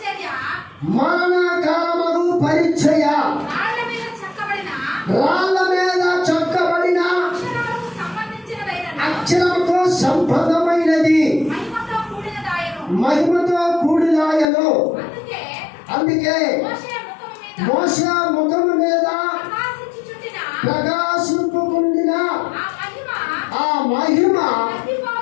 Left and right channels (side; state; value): right; drops out; at 14.5 s